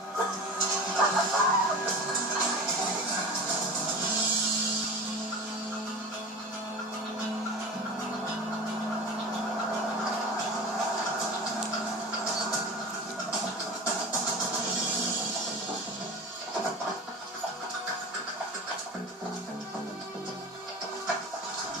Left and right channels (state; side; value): normal; both; correlation 0.33